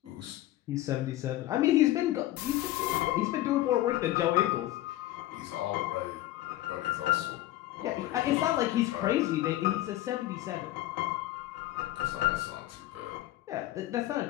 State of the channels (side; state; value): right; quieter; 15.3 dB